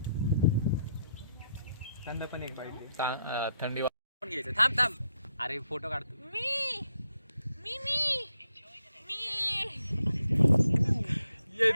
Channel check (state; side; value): inverted; both; correlation -0.78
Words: थंडी वाजून घ्यायचं. थांब अरे फोटो काढतो.